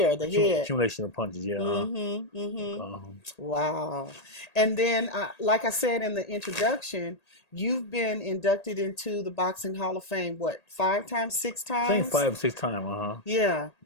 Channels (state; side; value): late; right; 1.8 ms